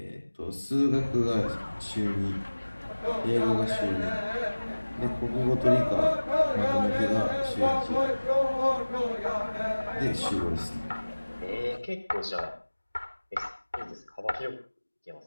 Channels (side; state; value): both; inverted; correlation -1.00